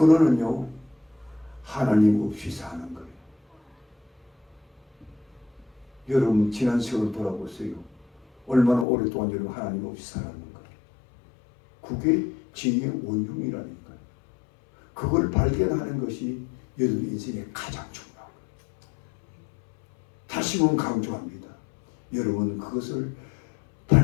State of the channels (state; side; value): drops out; right; at 8.8 s